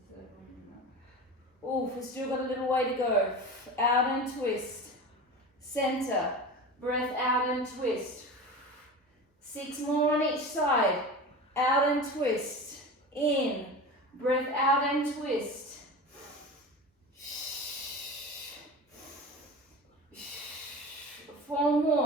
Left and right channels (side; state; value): both; normal; correlation 0.31